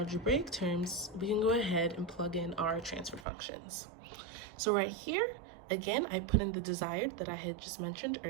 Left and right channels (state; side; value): drops out; left; at 3.2 s